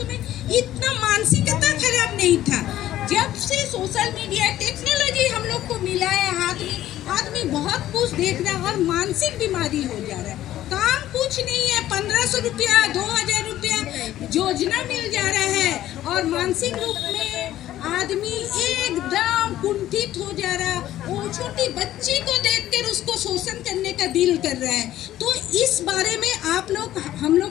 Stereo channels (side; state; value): right; quieter; 13.3 dB